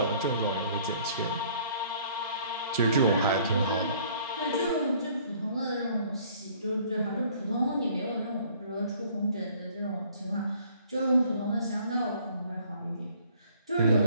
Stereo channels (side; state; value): both; inverted; correlation -0.58